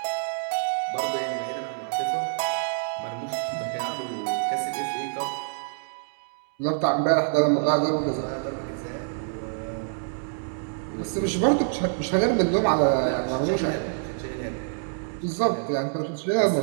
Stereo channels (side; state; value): left; silent; digital silence